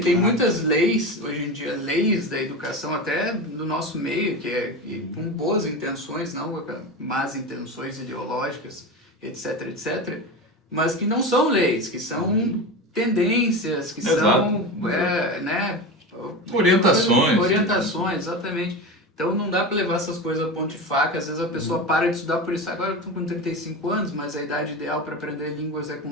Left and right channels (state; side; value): normal; both; correlation 0.24